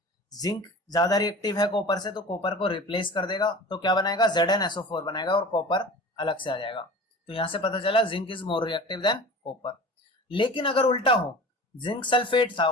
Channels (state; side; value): normal; both; correlation 0.38